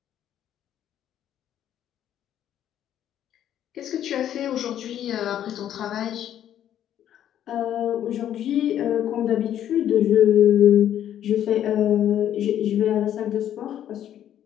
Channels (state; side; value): quieter; right; 10.8 dB